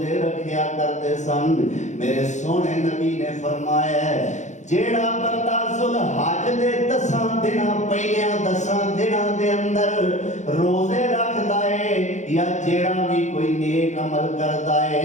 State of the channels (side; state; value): right; late; 0.34 ms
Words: رکھیا کرتے سن۔ میرے سونے نبی نے فرمایا جیڑا بندہ ذوالحج دے 10 دناں پہلیاں 10 دناں دے اندر روزے رکھدا ہے، یا جیڑا بھی کوئی نیک عمل کردا